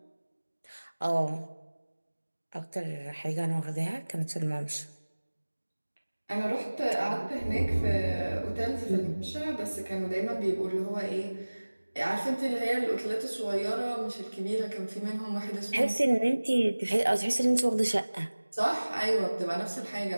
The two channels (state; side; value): inverted; both; correlation -1.00